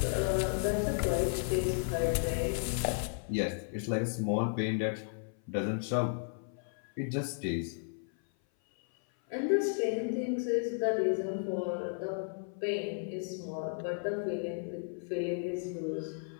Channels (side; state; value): right; silent; 55 dB below the other